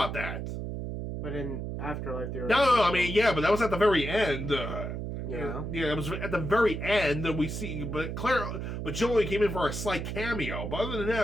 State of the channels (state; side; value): noise; right; hum, 5 dB below the sound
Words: that. But in Afterlife, they were... No, I mean, yeah, but that was at the very end. Yeah. Yeah, it was at the very end that we see, but Jill only came in for a slight cameo. But other than